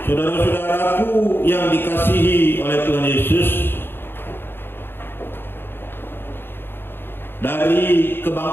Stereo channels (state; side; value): late; right; 0.10 ms